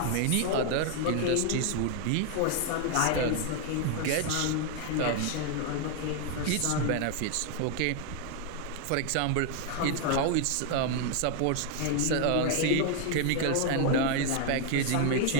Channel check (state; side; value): different; both; correlation 0.00